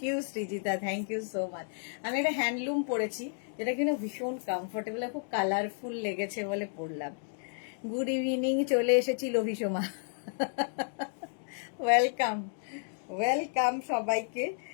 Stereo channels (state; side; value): silent; right; 56 dB below the other